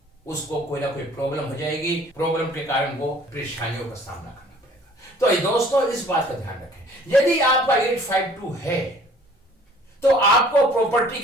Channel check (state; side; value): normal; both; correlation 0.54